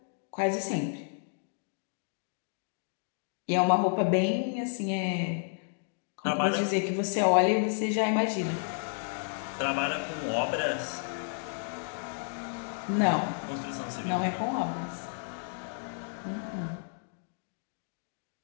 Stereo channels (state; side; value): silent; right; digital silence